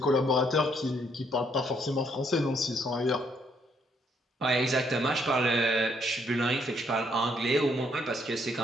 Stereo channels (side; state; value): both; normal; correlation 0.70